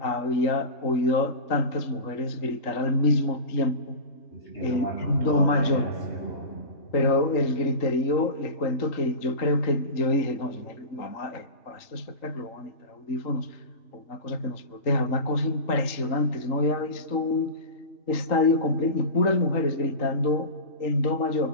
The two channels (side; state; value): right; late; 3.8 ms